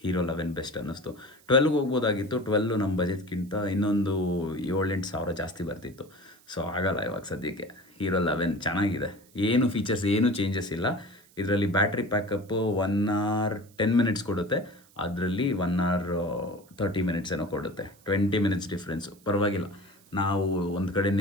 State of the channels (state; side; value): noise; right; hiss, 28 dB below the sound